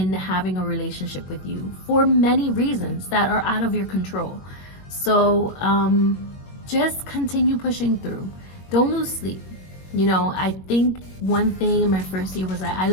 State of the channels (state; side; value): late; right; 21 ms